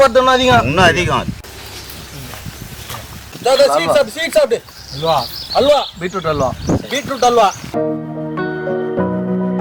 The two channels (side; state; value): both; identical; correlation 1.00